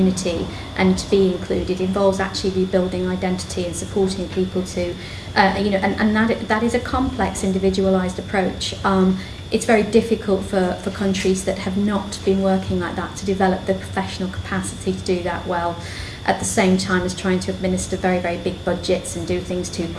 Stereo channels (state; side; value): identical; both; correlation 1.00